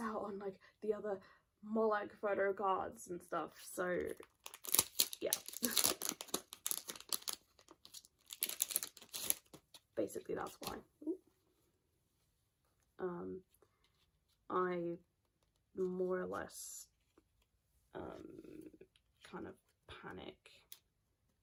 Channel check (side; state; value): both; identical; correlation 1.00